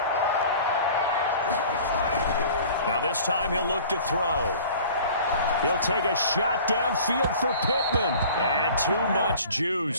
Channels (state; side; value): inverted; both; correlation -0.45